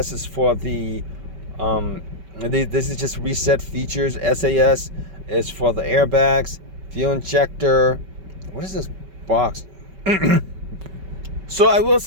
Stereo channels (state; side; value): late; left; 5.2 ms